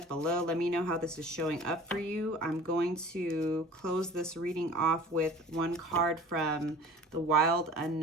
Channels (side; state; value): both; normal; correlation 0.43